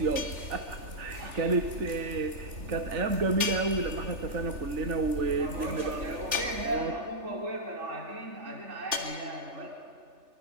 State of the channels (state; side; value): late; left; 3.4 ms